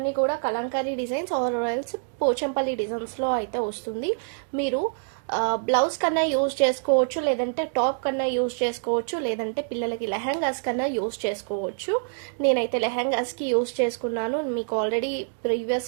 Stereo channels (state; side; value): silent; left; digital silence